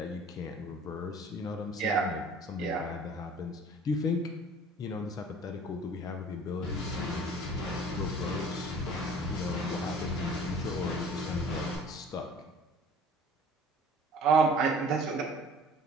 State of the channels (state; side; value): normal; both; correlation 0.48